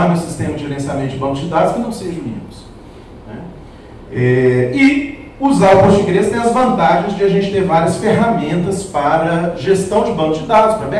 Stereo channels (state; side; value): identical; both; correlation 1.00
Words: meu sistema de gerenciamento de banco de dados que não seja o Linux. Né? E usar o Postgres tem as vantagens de a gente ter várias ferramentas para gestão de banco de dados, para